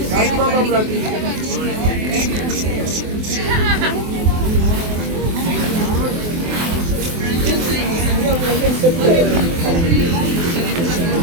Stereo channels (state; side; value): late; left; 24 ms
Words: Karibu baba mratibu.